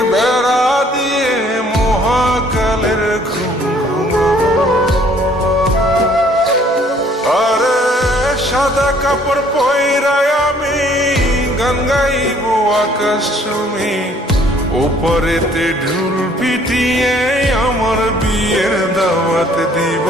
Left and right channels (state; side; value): normal; both; correlation 0.60